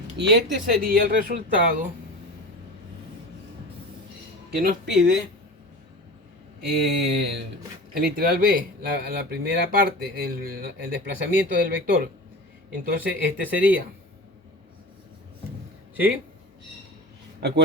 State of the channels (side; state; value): both; normal; correlation 0.32